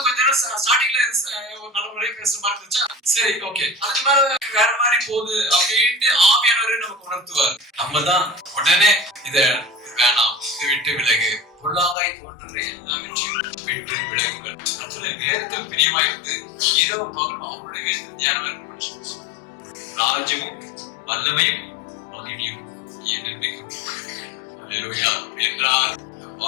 கொஞ்ச நேரம் ஸ்டார்டிங்ல ஒரு நல்ல முறையை பேசுற மாதிரி இருந்துச்சா, சரி ஓகே, அதுக்கு மேல வேற மாதிரி போகுது அப்படின்ட்டு ஆவியானவரே நமக்கு உணர்த்துவார். நம்ம தான் உடனே இத வேணாம், இதை விட்டு விலகு, பொல்லாங்காய் தோன்றுற எல்லாவற்றையும் விட்டு விலகுங்கள். அதுல வேதத்தில் பிரியமாயிருந்து இரவு பகலும் அவருடைய வேதத்தில் தியானம் இருக்கணும். ராஜ்யமும் வல்லமையும் மகிமையும் என்றென்றைக்கும் என்றார்.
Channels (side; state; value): right; drops out; at 12.0 s